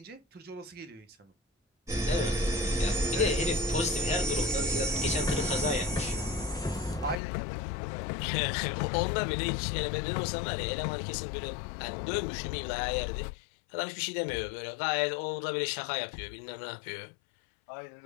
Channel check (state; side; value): drops out; right; at 7.2 s